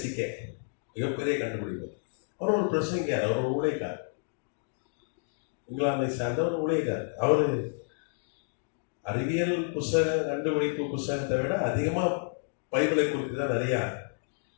மிகப்பெரிய கண்டுபிடிப்பு. அவர் ஒரு பிரசங்கியார், அவர் ஒரு ஊழியக்கார், இங்கிலாந்தை சார்ந்த ஒரு ஊழியக்கார். அவர் அறிவியல் புஸ்தக கண்டுபிடிப்பு புஸ்தகத்தை விட அதிகமாக பைபிளை குறித்து தான் நிறைய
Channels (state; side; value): silent; right; digital silence